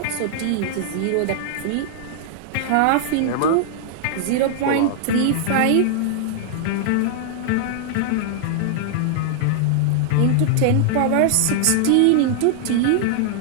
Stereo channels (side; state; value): both; different; correlation -0.01